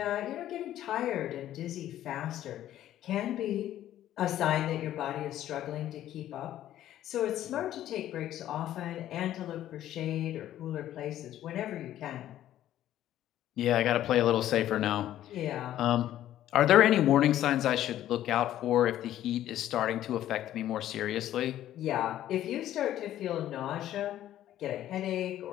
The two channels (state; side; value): quieter; right; 12.5 dB